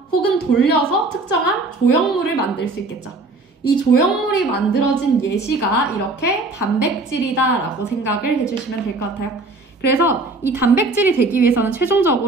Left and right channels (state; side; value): quieter; left; 3.3 dB